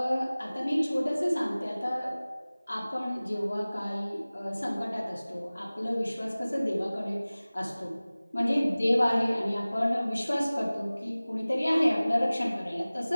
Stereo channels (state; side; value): inverted; both; correlation -0.99